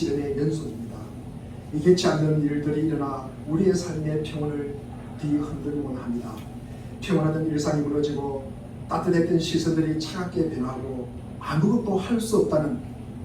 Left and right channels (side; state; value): both; identical; correlation 1.00